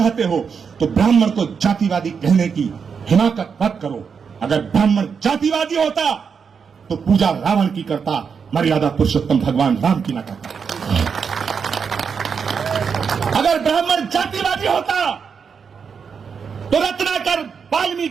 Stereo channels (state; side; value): quieter; left; 6.2 dB